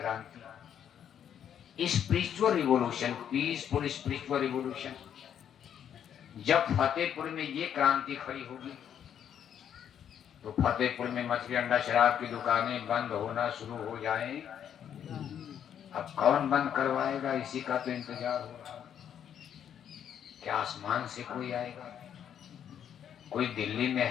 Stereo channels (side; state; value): right; quieter; 9.1 dB